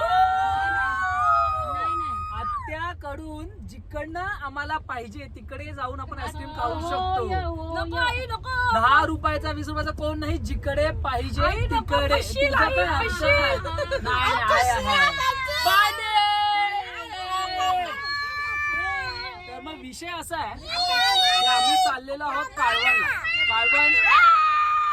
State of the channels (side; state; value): both; identical; correlation 1.00